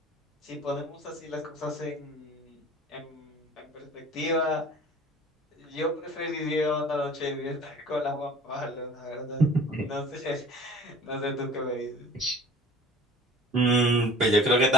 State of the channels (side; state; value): both; normal; correlation 0.47